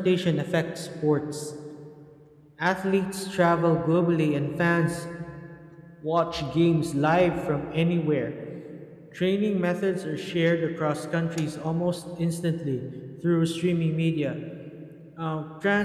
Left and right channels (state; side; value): identical; both; correlation 1.00